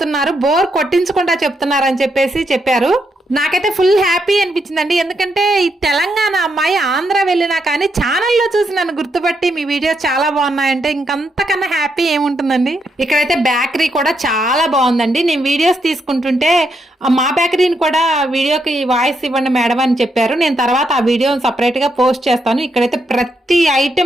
బోర్ కొట్టించకుండా చెప్తున్నారు అని చెప్పారు. నాకైతే ఫుల్ హ్యాపీ అనిపించిందండి. ఎందుకంటే ఈ తెలంగాణ అమ్మాయి ఆంధ్ర వెళ్ళినా కానీ ఛానల్లో చూసి నన్ను గుర్తుపట్టి మీ వీడియోస్ చాలా బాగున్నాయంటే ఇంకంతకన్నా హ్యాపీ ఏముంటుందండి. ఇక్కడైతే బేకరీ కూడా చాలా బాగుందండి. నేను వీడియోస్ తీసుకుంటుంటే మా బేకరీని కూడా వీడియోకి వాయిస్ ఇవ్వండి మేడం అని చెప్పారు. నేను తర్వాత ఆ వీడియోని సపరేట్ గా పోస్ట్ చేస్తాను. ఇక్కడైతే ప్రతి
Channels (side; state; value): both; normal; correlation 0.79